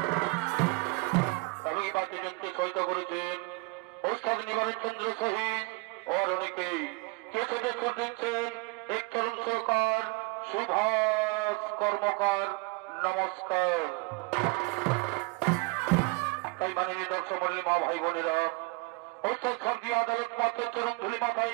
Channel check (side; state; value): left; quieter; 27.4 dB